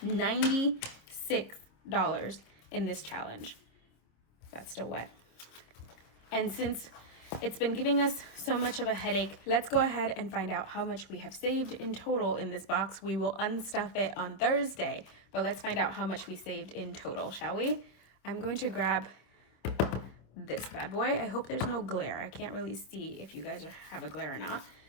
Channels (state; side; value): late; right; 26 ms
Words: $96 in this challenge. That's still wet. And since it's been giving us so much of a headache, let's go ahead and find out how much we have saved in total in this box. We will unstuff it on Thursday, but let's find out how much we saved in total, shall we? I'm going to grab this bad boy. I hope there's no glare. I can't really see if you guys have a glare or not.